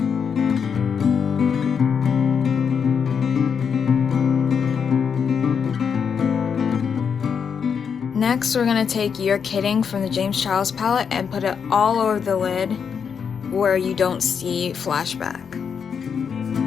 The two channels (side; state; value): right; quieter; 6.8 dB